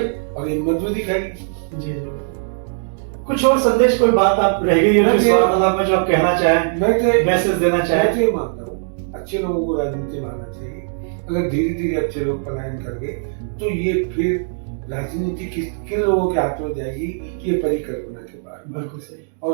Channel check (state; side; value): silent; left; digital silence